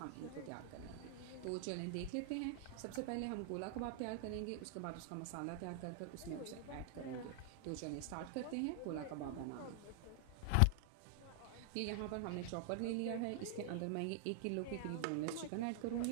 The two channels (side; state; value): both; different; correlation 0.00